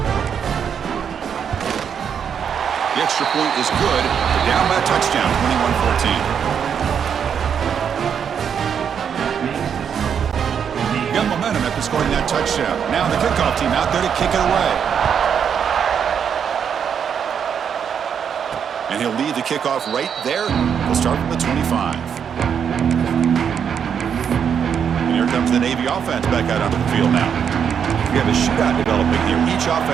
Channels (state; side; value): quieter; left; 7.7 dB